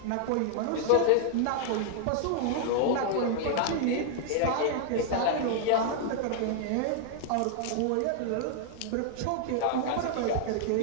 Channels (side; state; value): both; different; correlation 0.00